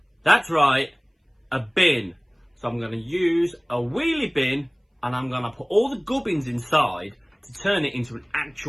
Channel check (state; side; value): identical; both; correlation 1.00